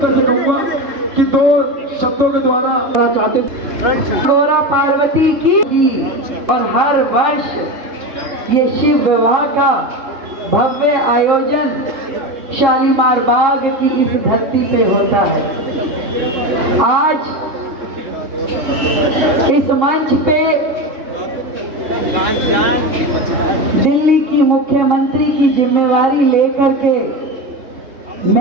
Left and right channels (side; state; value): left; late; 3.7 ms